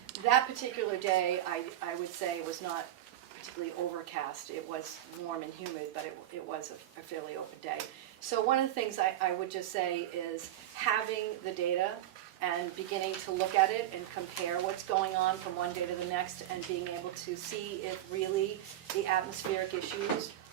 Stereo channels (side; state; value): left; quieter; 13.0 dB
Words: That particular day, I would say, was not particularly overcast. It was warm and humid, but it was a fairly open day. So one of the things I would just say is having the data and beginning to look at it and compare what's going on from one day to the next and being able to see if really the atmospheric issues